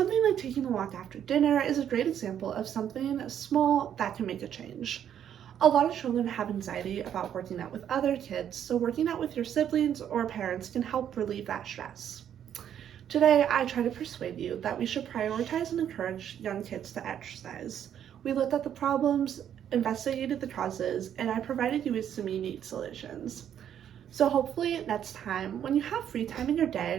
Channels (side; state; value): left; quieter; 9.6 dB